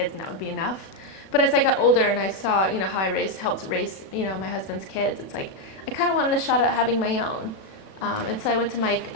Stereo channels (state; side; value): late; right; 37 ms